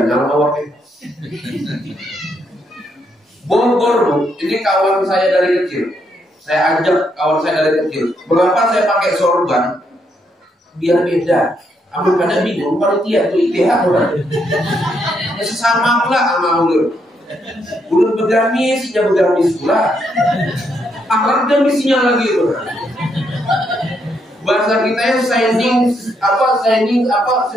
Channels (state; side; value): normal; both; correlation 0.76